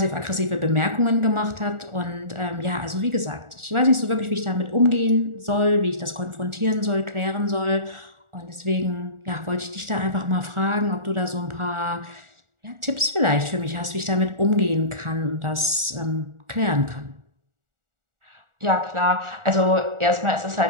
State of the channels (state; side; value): late; left; 1.4 ms